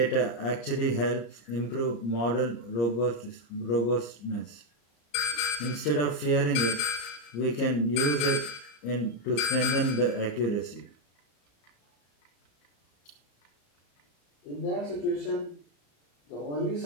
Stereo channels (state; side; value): late; right; 35 ms